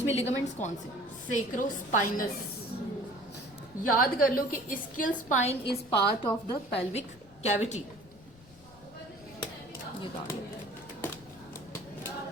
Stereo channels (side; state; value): left; noise; rumble, 23 dB below the sound